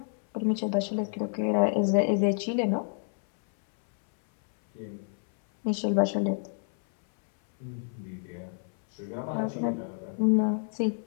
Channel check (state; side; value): silent; right; 59 dB below the other